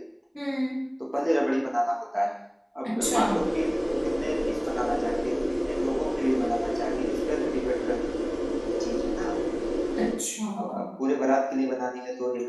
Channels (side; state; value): both; identical; correlation 1.00